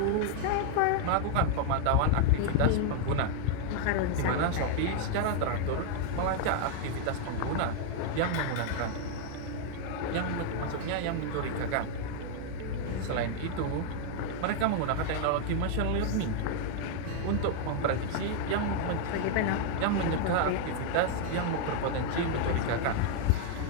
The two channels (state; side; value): different; both; correlation 0.00